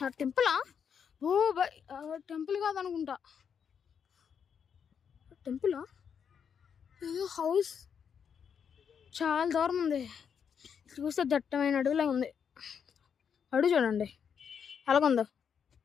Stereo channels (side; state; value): right; quieter; 7.3 dB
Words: టెంపులా? ఓ బై, టెంపుల్ కాదనుకుంటా. టెంపులా? ఏదో హౌస్ చాలా దూరం ఉంది. చూస్తే దట్టమైన అడవిలా ఉంది. అడుగు చూడండి అలాగుందో.